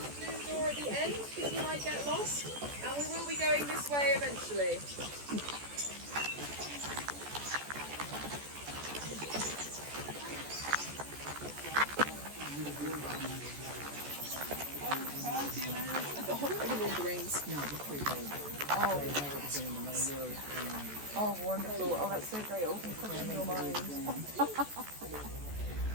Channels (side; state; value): left; late; 14 ms